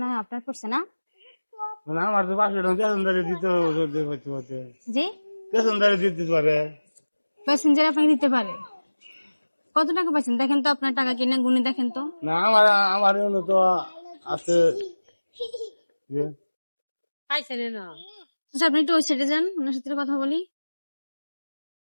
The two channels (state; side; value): inverted; both; correlation -1.00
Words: হয় আপনার পড়ছে না? আমার তো 500 টাকা পেছনদারে দিতে হতে জি, পেছনদারে দিতে পারে। প্যাসেঞ্জার আপনাকে দিতে পারে। কত টাকা পাইছেন দেখেন তো, আপনার টাকা কিনে গুনে দেখেন তো। না আমার আমার এমন তো আছে যে আচ্ছা, আপনি একটু ওই সাইডে যান, ওনার সাথে কথা বলি।